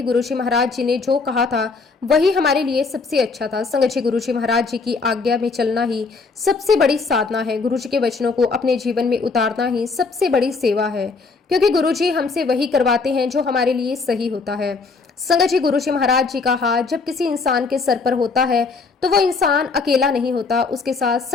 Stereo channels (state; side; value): quieter; right; 4.4 dB